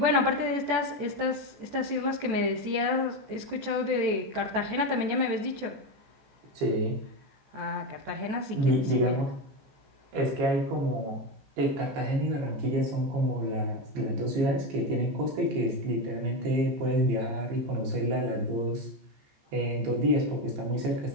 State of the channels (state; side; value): late; left; 14 ms